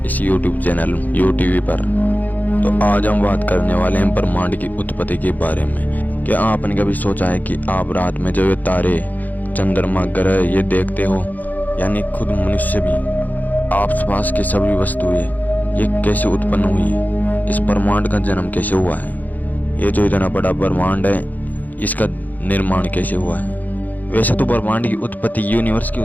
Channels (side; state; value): right; late; 0.082 ms